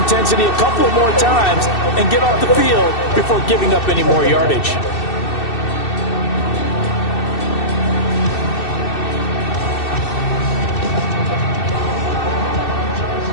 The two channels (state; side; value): late; right; 2.6 ms